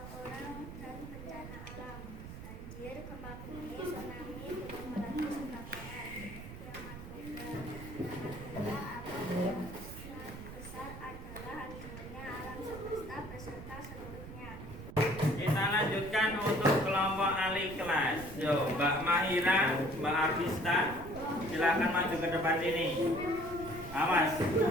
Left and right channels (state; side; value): noise; right; rumble, 12 dB below the sound